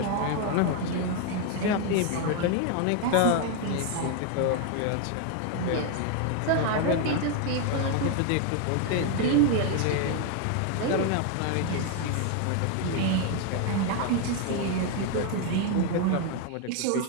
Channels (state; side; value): different; both; correlation 0.01